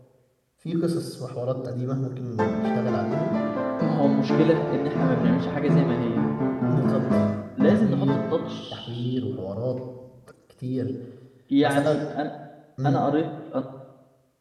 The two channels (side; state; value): both; identical; correlation 1.00